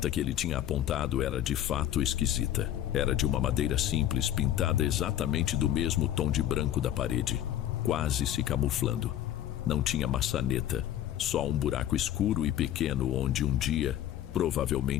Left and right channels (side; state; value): right; quieter; 11.7 dB